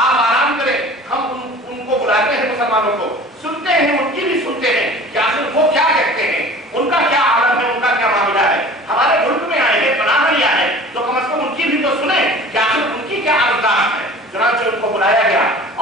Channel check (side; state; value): both; normal; correlation 0.43